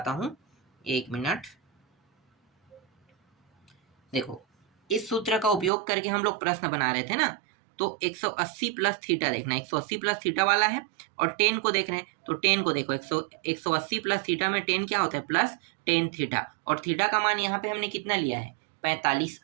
हूं, एक मिनट। देखो इस सूत्र का उपयोग करके हम लोग प्रश्न बना रहे थे ना, तो 180 प्लस थीटा देखना, 180 प्लस थीटा वाला है, और 10 को देख रहे हैं तो 10 को देखो, 180 प्लस थीटा में 10 क्या होता है, प्लस 10 थीटा। और थीटा का मान यहाँ पे हमने कितना लिया है, 45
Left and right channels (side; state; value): left; drops out; at 5.7 s